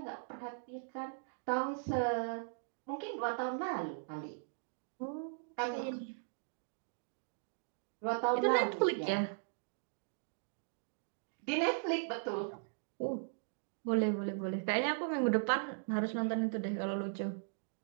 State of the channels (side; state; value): left; silent; digital silence